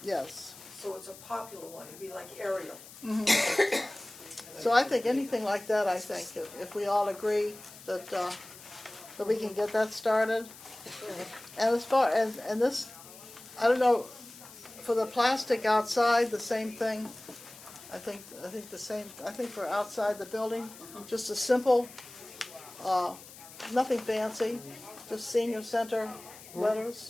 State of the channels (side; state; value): left; noise; hiss, 18 dB below the sound